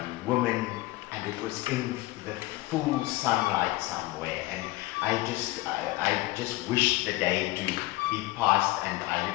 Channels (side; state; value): right; quieter; 19.3 dB